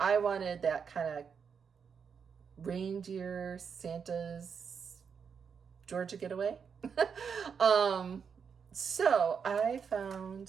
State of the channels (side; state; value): left; quieter; 6.5 dB